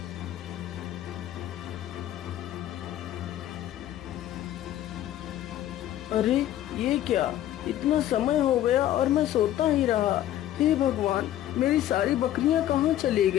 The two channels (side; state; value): right; quieter; 12.6 dB